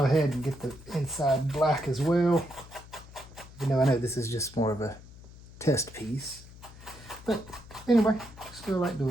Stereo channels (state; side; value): noise; left; hum, 19 dB below the sound